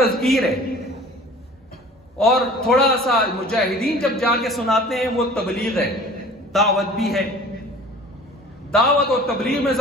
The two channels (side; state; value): both; normal; correlation 0.46